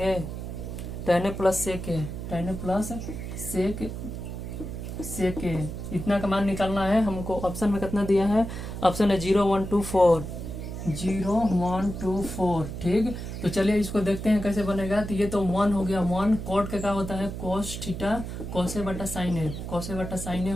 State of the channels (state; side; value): noise; right; hum, 7 dB below the sound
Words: tan A plus sec A. इतना का मान निकालना है हमको। Option में कितना दिया है? ऑप्शन है 0 1 2 4, 0 1 2 4। ठीक, तो चलिए इसको देखते हैं कैसे बनेगा। तो ये तो 1 हो गया। 1 कॉट का क्या होता है? कॉस थीटा कॉसे बटा साइन ए, कॉसे बटा साइन ए